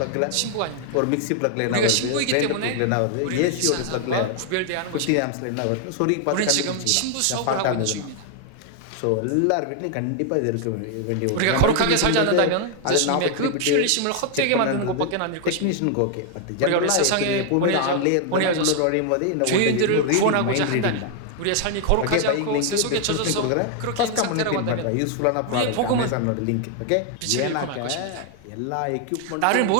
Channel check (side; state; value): both; different; correlation 0.00